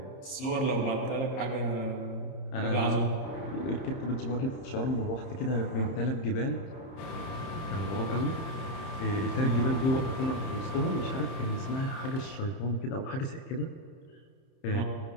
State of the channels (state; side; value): late; right; 30 ms